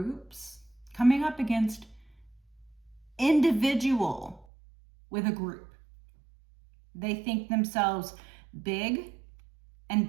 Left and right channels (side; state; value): left; drops out; at 4.5 s